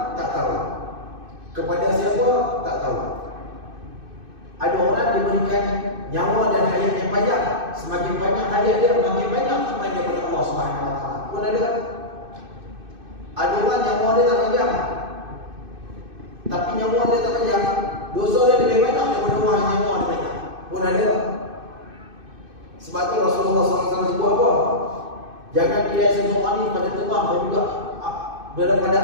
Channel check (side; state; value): left; late; 2.6 ms